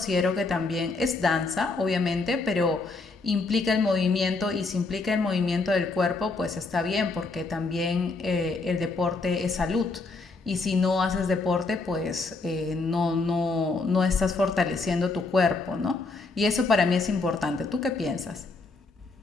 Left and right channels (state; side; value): quieter; right; 3.7 dB